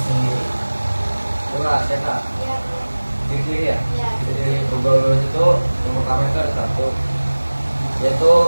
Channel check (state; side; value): inverted; both; correlation -1.00